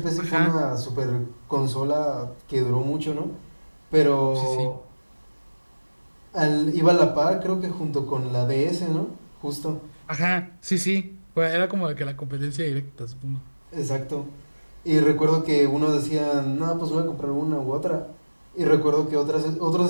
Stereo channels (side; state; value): both; inverted; correlation -1.00